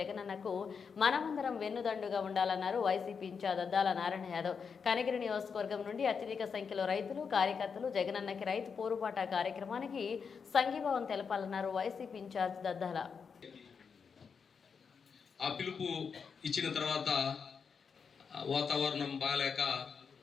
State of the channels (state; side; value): quieter; right; 6.0 dB